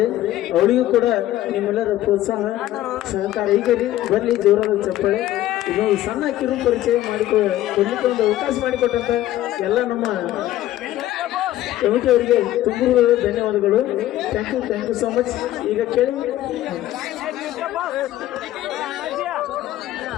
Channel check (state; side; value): quieter; right; 14.1 dB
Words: ಅವಳಿಗೂ ಕೂಡ ನಿಮ್ಮೆಲ್ಲರ ಪ್ರೋತ್ಸಾಹ ಸಹಕಾರ ಈಗ ಬರ್ಲಿ ಜೋರಾದ ಚಪ್ಪಾಳೆ. ಇದೊಂದು ಸಣ್ಣ ಕಿರು ಪರಿಚಯ ಕೊಡ್ಲಿಕ್ಕೆ ಒಂದು ಅವಕಾಶ ಮಾಡಿಕೊಟ್ಟಂತ ಎಲ್ಲ ನಮ್ಮ ಕಮಿಟಿ ಅವರಿಗೆ ತುಂಬ ಧನ್ಯವಾದಗಳು. Thank you so much. ಈಗ ಕೇಳಿ